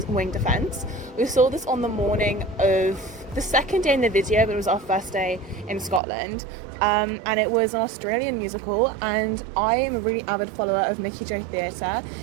Wing Defence. We saw this on the morning of the second day in the video, but it was our first day in Scotland. And it was an Australian musical, and I am a really avid follower of Mickey J Theatre.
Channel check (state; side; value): drops out; left; at 6.0 s